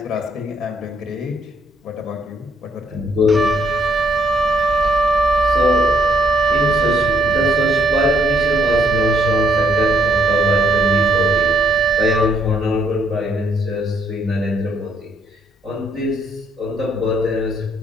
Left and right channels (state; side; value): normal; both; correlation 0.69